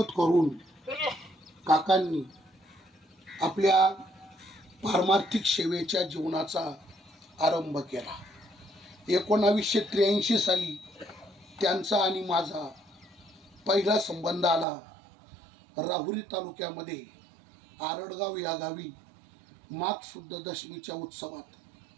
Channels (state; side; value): drops out; left; at 14.7 s